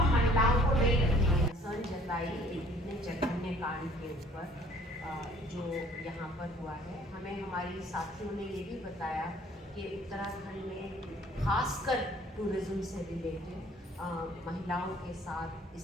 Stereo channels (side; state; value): both; normal; correlation 0.56